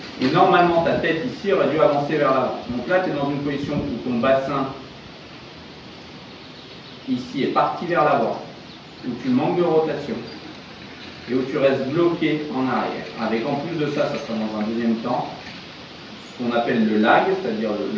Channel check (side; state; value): both; identical; correlation 1.00